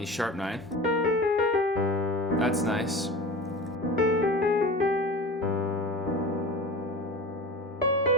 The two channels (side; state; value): both; normal; correlation 0.34